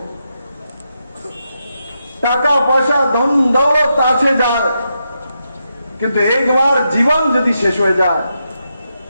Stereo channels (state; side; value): inverted; both; correlation -0.84